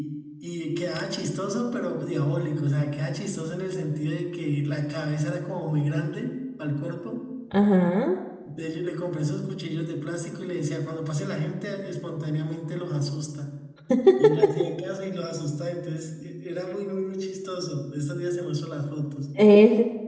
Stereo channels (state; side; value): identical; both; correlation 1.00